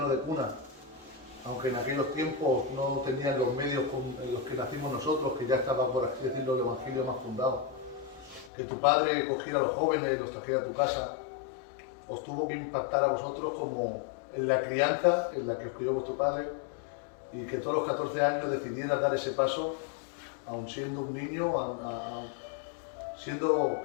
de cuna, aunque en aquellos tiempos no tenían los medios en los que nacimos nosotros, que ya estaba, por así decirlo, el Evangelio más fundado, que tu padre cogiera a los jóvenes y los trajera a tu casa, os tuvo que impactar a vosotros como en la crianza en la que os crió vuestro padre, y que todos los 14 años decidieras dar ese paso, aun siendo un niño, siendo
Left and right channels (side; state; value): right; drops out; at 8.5 s